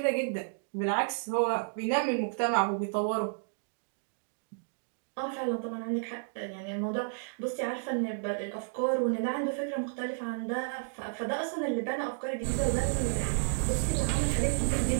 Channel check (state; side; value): silent; left; digital silence